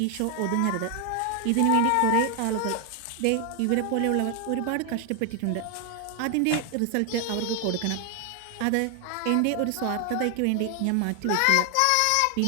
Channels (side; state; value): both; different; correlation 0.00